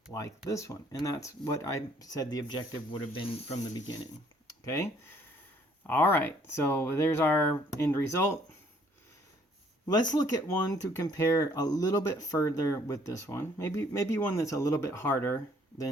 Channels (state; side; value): normal; both; correlation 0.62